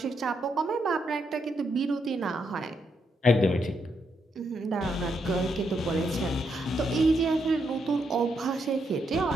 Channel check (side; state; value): both; normal; correlation 0.79